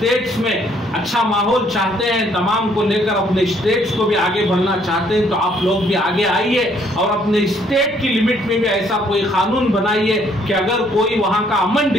में अच्छा माहौल चाहते हैं, तमाम को लेकर अपने स्टेट्स को भी आगे बढ़ना चाहते हैं, तो आप लोग भी आगे आइए और अपने स्टेट की लिमिट में भी ऐसा कोई कानून बनाइए कि अगर कोई वहां का अमन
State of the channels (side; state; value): both; normal; correlation 0.65